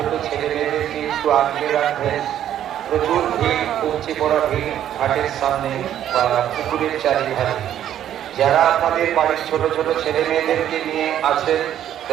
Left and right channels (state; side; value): quieter; left; 10.9 dB